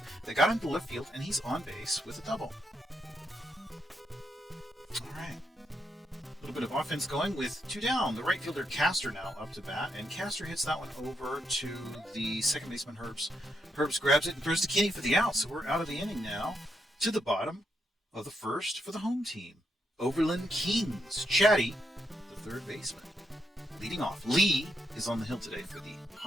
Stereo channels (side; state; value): both; normal; correlation 0.80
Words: that got into left field, and he's on base with a double. All right. A little bit of offense going with 2 down. The right fielder Castor now up to bat, and Castor hits that one over to the second baseman Herbs. Herbs grabs it and throws to Kinney for the out, so we're out of the inning now to the bottom of the first for the home team. Overland Kings. Chatty, the third baseman. Leading off, Lee is on the hill today for the